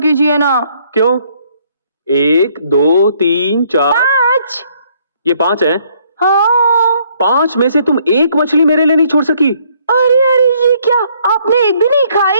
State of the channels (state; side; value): inverted; both; correlation -0.66